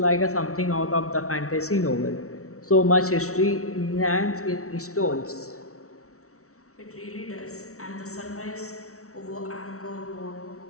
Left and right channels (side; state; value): right; late; 0.64 ms